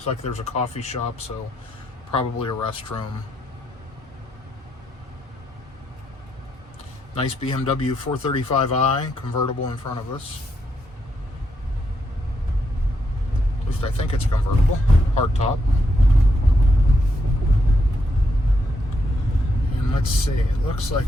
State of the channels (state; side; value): normal; both; correlation 0.79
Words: like there's a coffee shop, so probably a restroom. Nice BMW 435i convertible in front of us. At least I think it's convertible. Hardtop. And let's see, it looks